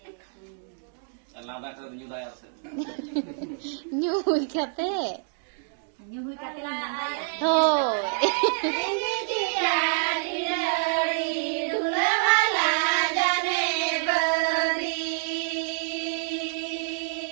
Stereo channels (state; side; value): silent; left; digital silence